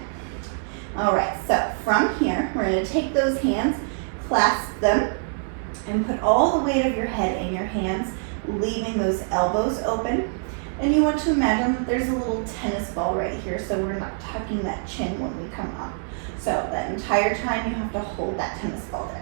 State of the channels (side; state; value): left; silent; 62 dB below the other